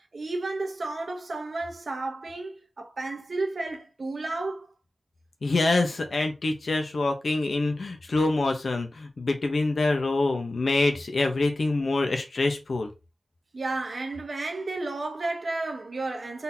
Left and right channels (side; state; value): both; normal; correlation 0.94